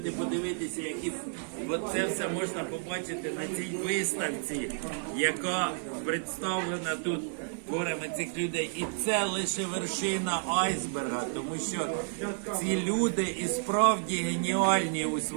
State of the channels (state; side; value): silent; left; 57 dB below the other